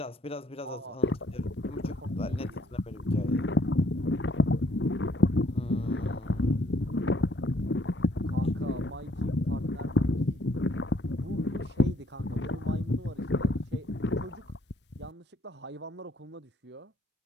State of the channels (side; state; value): both; normal; correlation 0.65